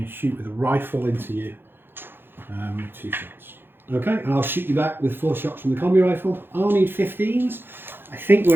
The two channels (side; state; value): left; late; 0.10 ms